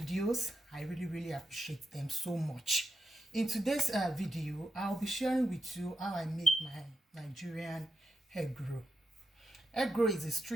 I really appreciate them so much. In today's video, I'll be sharing with you how I make my Nigerian egg roll. Egg roll is a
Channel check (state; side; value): normal; both; correlation 0.87